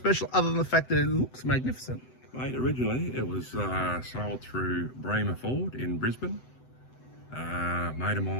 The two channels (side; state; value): right; late; 7.9 ms